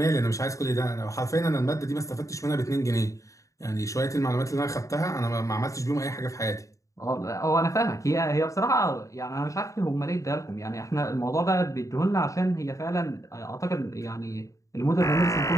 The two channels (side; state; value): right; late; 0.16 ms